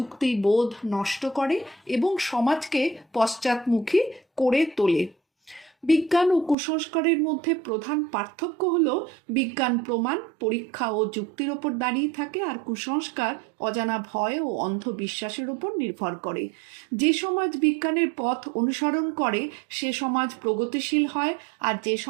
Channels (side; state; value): left; drops out; at 6.6 s